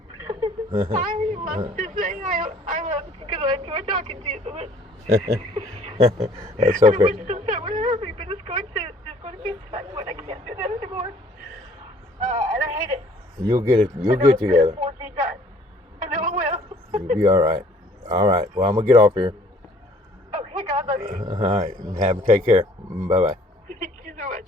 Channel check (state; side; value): normal; both; correlation 0.56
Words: I love to say I love you because I enjoy talking to you so much. That's I okay. wish this time would hurt me, but it's going to be a time when I can't do that anymore. And I hate it. You'll get it. You'll get together. I know I will. You'll be all right. All right. Well, I'm gonna get off here. Okay, God love you. All right. Take care. Bye bye. Thank you so